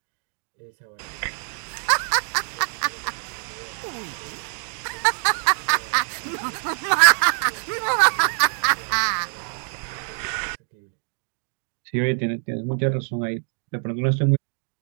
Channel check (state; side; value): silent; left; digital silence